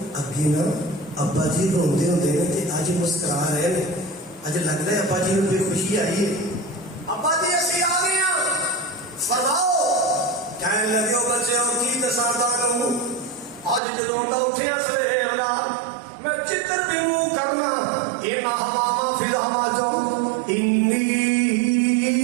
اگے نا ابا جی روندے ہوندے نے تے اج مسکرا رہے نے اج لگدا ہے ابا جی نو کوئی خوشی آئی ہے ابا جی اسی آ گئے ہیں فرماؤ کہنے لگے ہو بچے ہو کی دساں تانوں اج جدوں میں اٹھیا سویرے اللہ میں چتر بھی منہ کرنا اے ہوا فی الہوا جو انی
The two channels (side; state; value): left; drops out; at 13.8 s